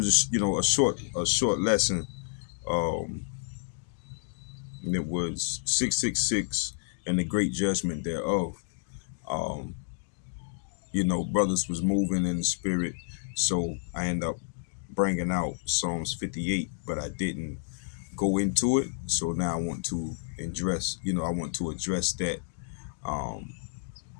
a short lesson. Um, and it was 666 and the great judgment thereof. Um, brothers was moving in the spirit, so I end up bringing out Psalms 58, but I didn't go into it. So now I want to address that. Um,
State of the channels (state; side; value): silent; right; digital silence